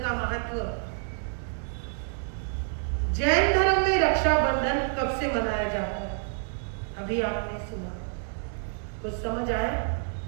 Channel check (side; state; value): left; silent; digital silence